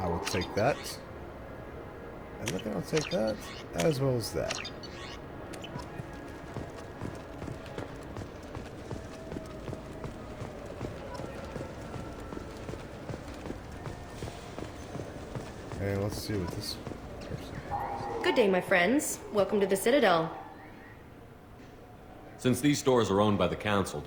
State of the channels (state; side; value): identical; both; correlation 1.00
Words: will take that. And I think I'll take that, as well as that. And let's see what this person... Good day, my friends. Welcome to the Citadel. Since these stores are owned by the Council,